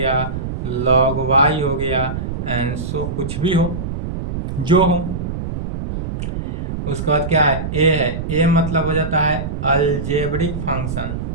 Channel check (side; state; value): right; noise; rumble, 4 dB below the sound